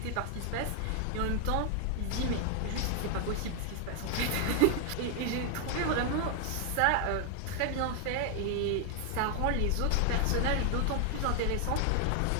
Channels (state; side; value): different; both; correlation 0.00